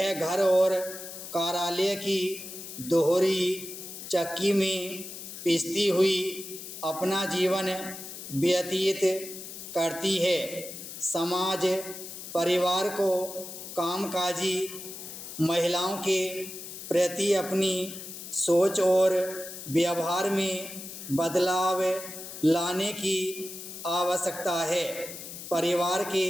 घर और कार्यालय की दोहरी चक्की में पिसती हुई अपना जीवन व्यतीत करती है। समाज परिवार को कामकाजी महिलाओं के प्रति अपनी सोच और व्यवहार में बदलाव लाने की आवश्यकता है। परिवार के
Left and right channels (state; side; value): noise; left; hiss, 11 dB below the sound